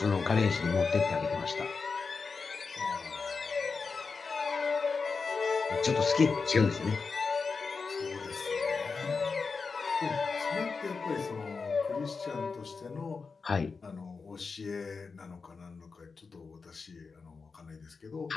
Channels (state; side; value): quieter; right; 4.8 dB